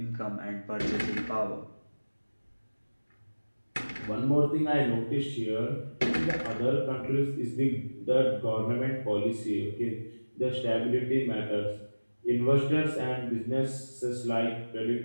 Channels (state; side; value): inverted; both; correlation -1.00